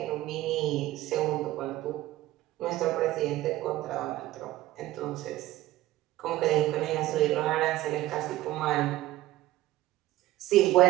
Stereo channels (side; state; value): left; quieter; 15.9 dB